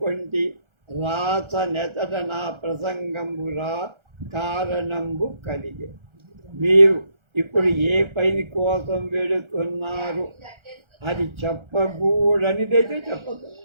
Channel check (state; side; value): late; left; 1.3 ms